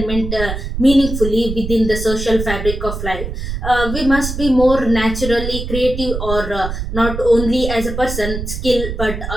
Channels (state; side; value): noise; right; rumble, 5 dB below the sound